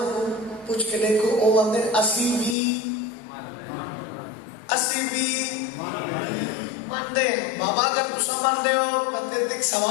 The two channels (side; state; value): right; drops out; at 2.6 s